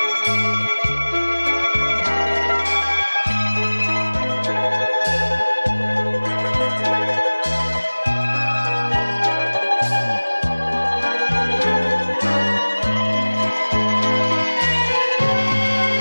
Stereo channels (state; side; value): inverted; both; correlation -1.00